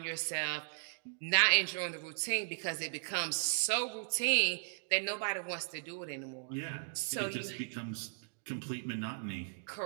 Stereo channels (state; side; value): silent; left; digital silence